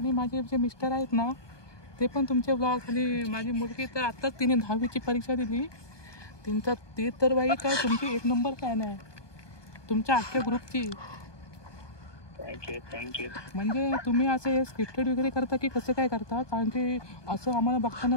माझे जे मिस्टर आहेत ना ते पण तुमचे ब्लॉग, आणि माझी मुलगी तर आत्ताच तिने 10वीची परीक्षा दिली. ते तर बाई काय तुमची 1 नंबर फॅन आहे तुमच्या अख्ख्या ग्रुपची. थँक्यू. म्हणजे तुम्ही असं स्क्रिप्टेड वगैरे करता की कसं काय करता? कारण की असं आम्हाला बघताना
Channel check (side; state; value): right; late; 1.2 ms